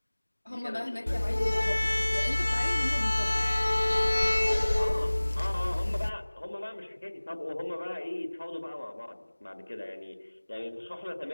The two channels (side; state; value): both; inverted; correlation -1.00